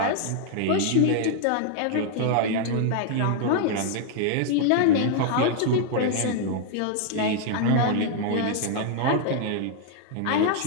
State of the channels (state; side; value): different; both; correlation -0.01